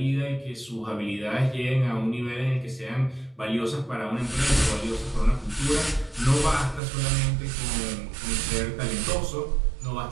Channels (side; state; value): left; drops out; at 6.8 s